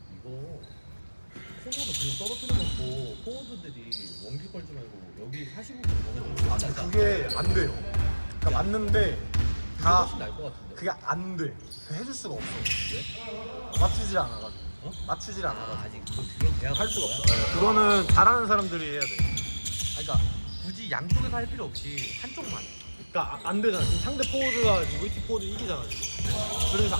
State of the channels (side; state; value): both; inverted; correlation -1.00